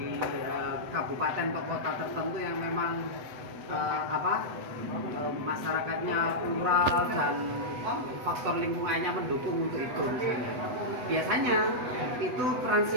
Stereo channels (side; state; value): left; late; 8.0 ms